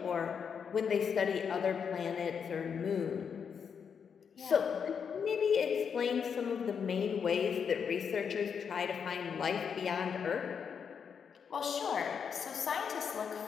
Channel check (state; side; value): quieter; right; 6.8 dB